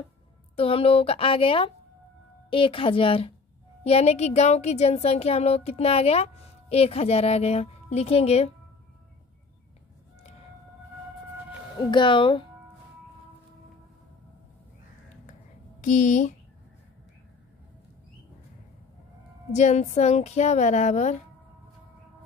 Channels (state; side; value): quieter; right; 4.3 dB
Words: तो हम लोगों का आ गया 1000, यानी कि गांव की जनसंख्या हम लोग कितना आ गया, 1000 आ गया। लिखेंगे गांव की जनसंख्या बराबर